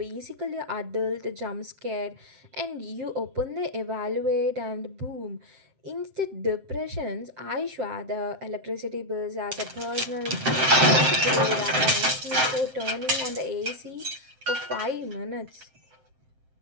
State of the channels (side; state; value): left; late; 7.7 ms